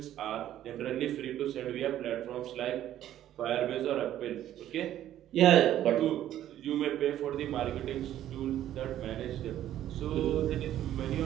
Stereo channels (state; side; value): quieter; left; 12.1 dB